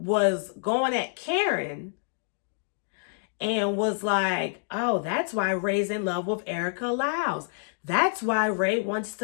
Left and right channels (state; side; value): silent; right; digital silence